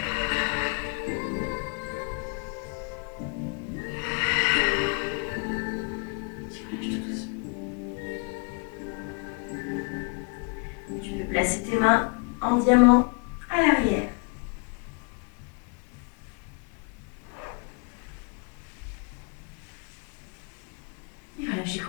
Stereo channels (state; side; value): quieter; right; 33.0 dB